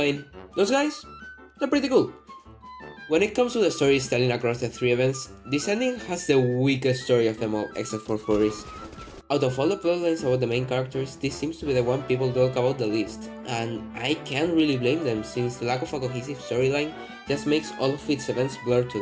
those guys? They're pretty cool. When it comes to the storytelling across the three events, this ending has the weakest story of them all, except for Furries. Out of all the plotlines about the main characters, this seems to be the one people talk about the least, and I can't really blame them since the lack of a cohesive storyline just makes all of its events blur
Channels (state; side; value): identical; both; correlation 1.00